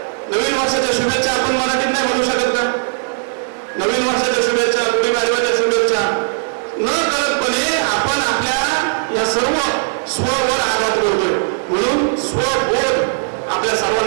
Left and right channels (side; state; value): left; silent; digital silence